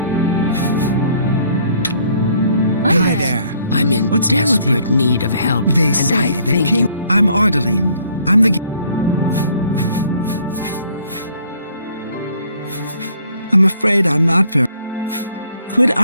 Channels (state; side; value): inverted; both; correlation -0.62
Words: Hi There. I'm in What's new with you? desperate need of help. They and say I the think king... you... I'm Ardeline. I'm the... I'm afraid I'm not very... Quick